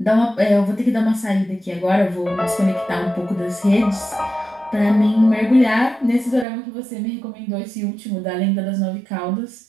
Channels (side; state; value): left; drops out; at 6.5 s